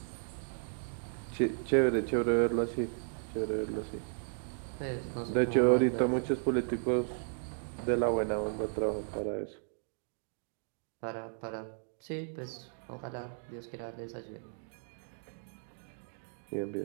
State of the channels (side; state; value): left; silent; digital silence